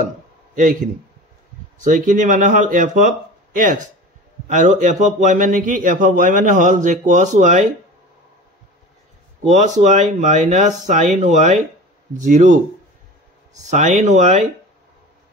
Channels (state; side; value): normal; both; correlation 0.35